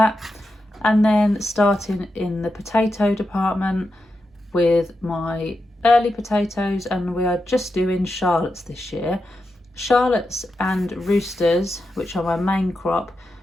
And then starting in the potato department with my early potatoes, and we are just doing Charlottes this year. Charlottes and Roosters, which are my main crop,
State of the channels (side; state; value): both; normal; correlation 0.88